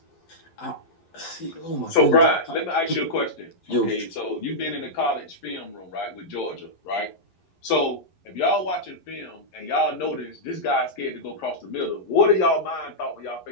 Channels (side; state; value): right; late; 11 ms